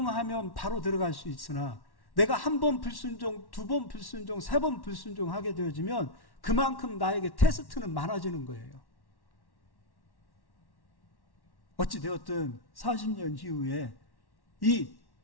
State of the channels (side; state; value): right; late; 1.1 ms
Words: 바로 들어갈 수 있으나 내가 한 번 불순종, 두 번 불순종, 세 번 불순종하게 되어지면 그만큼 나에게 테스트는 많아지는 거예요. 어찌되었든 40년 이후에 이